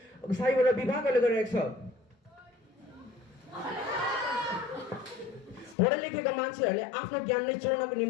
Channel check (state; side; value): drops out; right; at 5.8 s